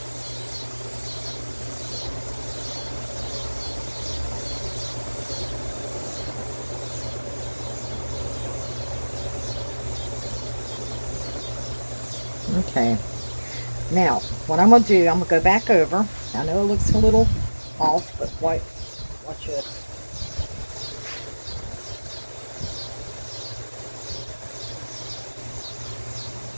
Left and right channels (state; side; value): inverted; both; correlation -1.00